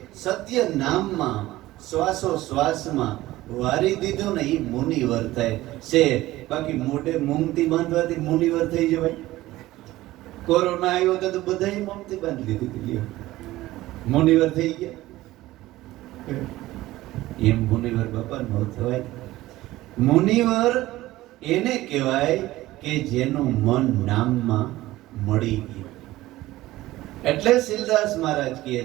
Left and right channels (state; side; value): quieter; left; 16.8 dB